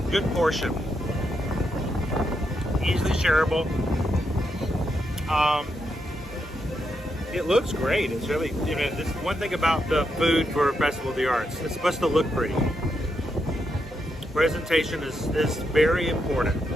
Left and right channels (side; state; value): both; normal; correlation 0.82